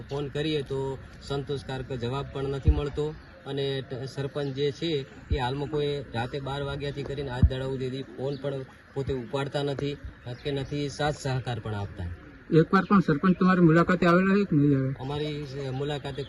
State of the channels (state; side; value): identical; both; correlation 1.00